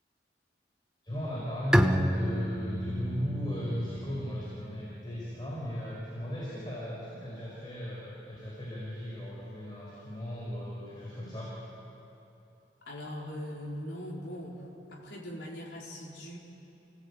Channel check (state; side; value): normal; both; correlation 0.89